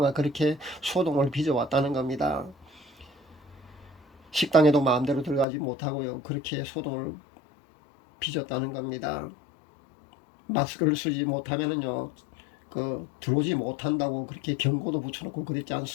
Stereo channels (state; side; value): drops out; right; at 5.5 s